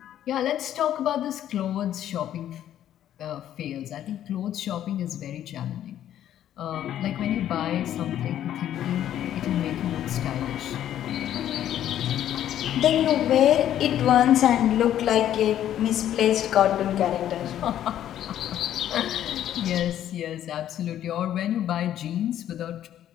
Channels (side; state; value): right; quieter; 11.3 dB